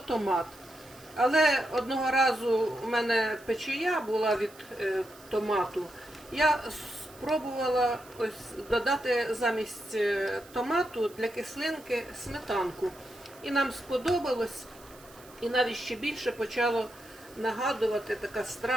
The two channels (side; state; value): right; noise; hiss, 23 dB below the sound